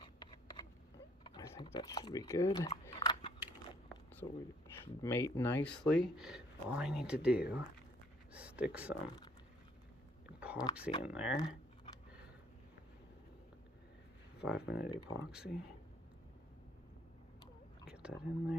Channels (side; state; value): both; normal; correlation 0.63